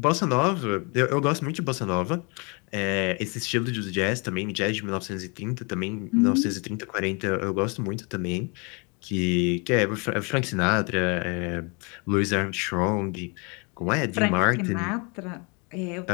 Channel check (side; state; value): right; quieter; 32.0 dB